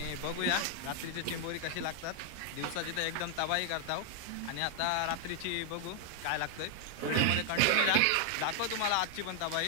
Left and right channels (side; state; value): both; different; correlation 0.00